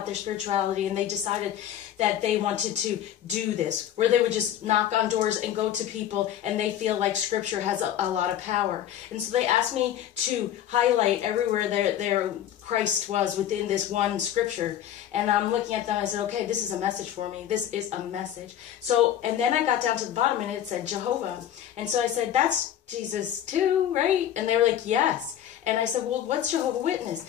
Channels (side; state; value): right; quieter; 10.8 dB